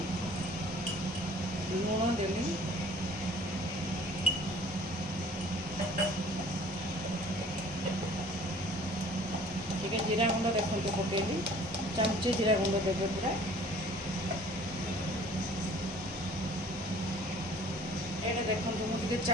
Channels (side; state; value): both; normal; correlation 0.51